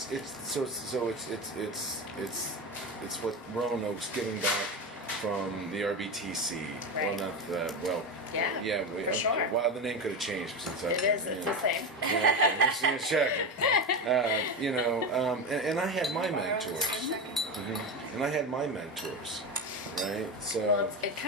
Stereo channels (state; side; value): normal; both; correlation 0.19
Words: It's what Roanoke's giving back from the RBTC. Right. Well, not that. Well, Yeah, for sure. Well, the name could have changed since It is. It's the same. Yeah, okay, just check. And I had my mentors, and I had my mentors, right? So. Well, it